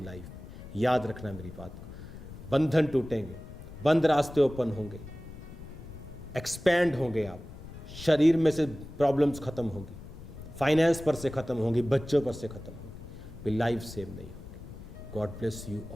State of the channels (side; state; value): left; noise; rumble, 14 dB below the sound